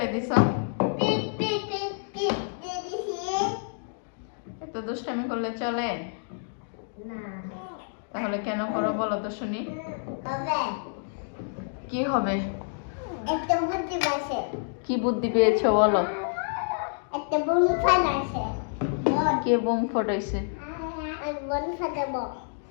দিছ। এত দুষ্টামি করলে চলে? তাহলে কেন করো বলো তো শুনি। কি হবে? কি বুদ্ধি পেয়েছো বলো? কে বোম ফাটাইছে?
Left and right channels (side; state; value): right; silent; digital silence